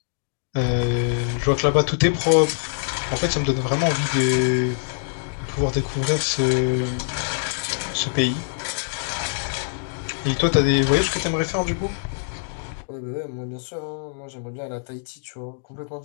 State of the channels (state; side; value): silent; right; digital silence